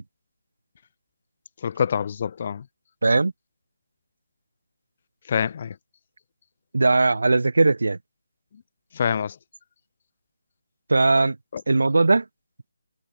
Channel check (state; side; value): inverted; both; correlation -0.94